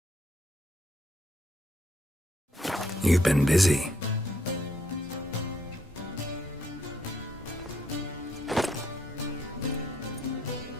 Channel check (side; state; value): both; normal; correlation 0.71